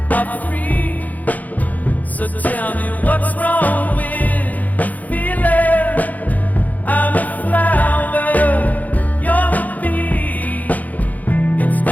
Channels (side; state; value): right; late; 0.079 ms